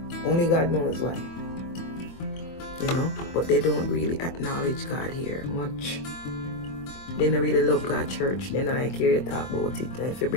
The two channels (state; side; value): late; right; 24 ms